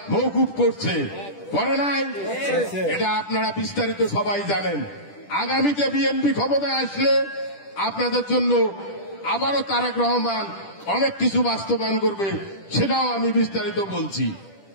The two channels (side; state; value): right; late; 10 ms